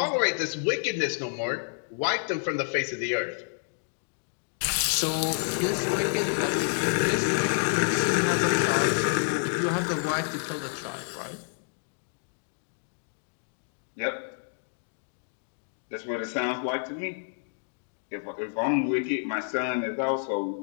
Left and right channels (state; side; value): silent; right; digital silence